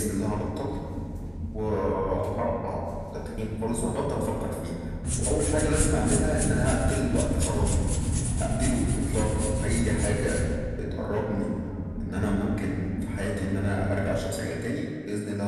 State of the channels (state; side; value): identical; both; correlation 1.00